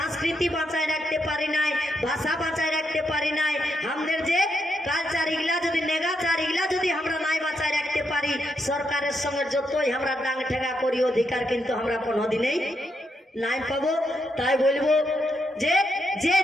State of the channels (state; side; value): normal; both; correlation 0.81